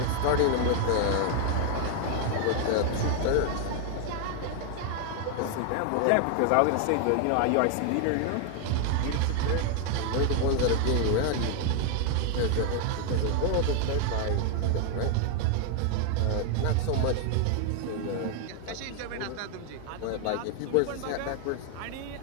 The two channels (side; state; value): both; different; correlation 0.00